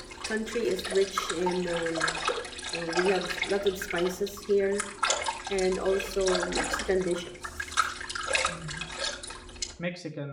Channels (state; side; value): identical; both; correlation 1.00